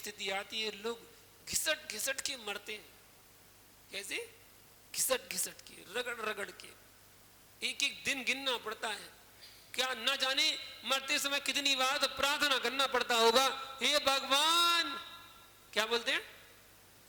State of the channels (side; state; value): both; identical; correlation 1.00